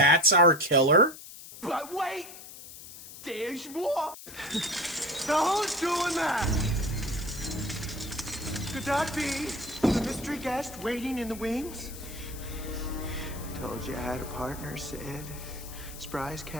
our killer? But wait! There's more! Now who's doing that? Could that be the mystery guest waiting in the wings? Told you I had a partner, Sid. Surprise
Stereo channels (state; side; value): noise; left; hiss, 15 dB below the sound